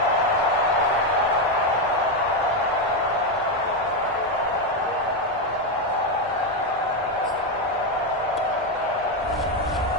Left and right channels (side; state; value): right; noise; hum, 27 dB below the sound